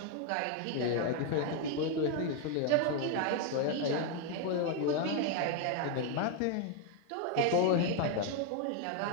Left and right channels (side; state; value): both; different; correlation 0.01